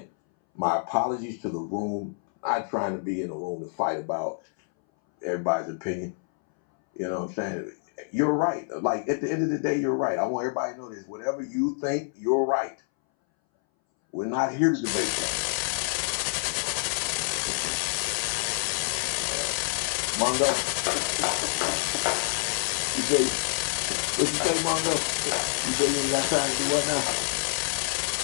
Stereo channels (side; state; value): right; silent; 60 dB below the other